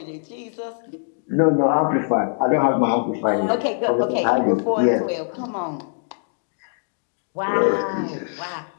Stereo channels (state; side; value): silent; right; digital silence